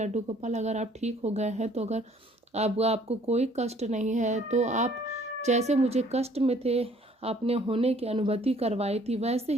गोपाल, अगर आप ठीक हो गए हैं तो अगर आपको कोई कष्ट नहीं है तो आप जैसे मुझे कष्ट में थे आपने होने की अनुभूति करवाई थी, वैसे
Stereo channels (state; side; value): normal; both; correlation 0.58